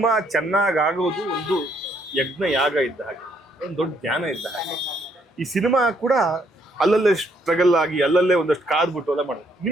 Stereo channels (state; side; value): normal; both; correlation 0.70